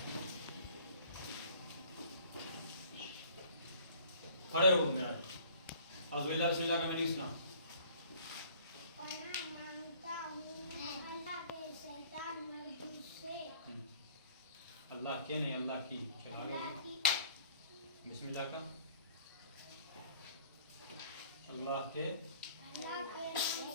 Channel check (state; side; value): inverted; both; correlation -0.54